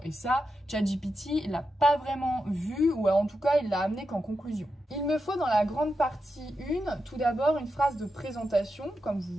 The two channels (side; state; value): both; normal; correlation 0.88